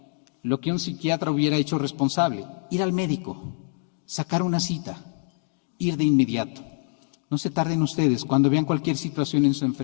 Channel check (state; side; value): silent; right; digital silence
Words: lo que un psiquiatra hubiera hecho responsable, ir al médico, sacar una cita, ir de inmediato. No se tarden ustedes cuando vean cualquier situación en su